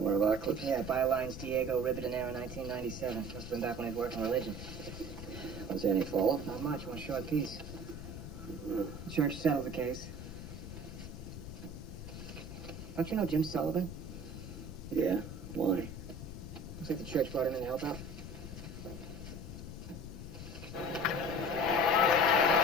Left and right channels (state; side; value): noise; left; rumble, 9 dB below the sound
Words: one of our clips? Yeah, bylines Diego Ribadenero, 1997. Must have been back when he was working religion. Was there any follow-up? Not much, one short piece. The church settled the case. Don't you know Jim Sullivan? Yeah. Why? Looks like the church brought him in to help out.